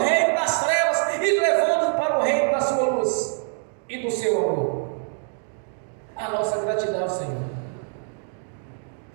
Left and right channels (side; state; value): left; silent; 55 dB below the other